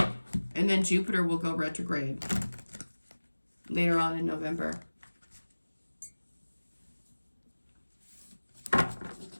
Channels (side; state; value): both; inverted; correlation -1.00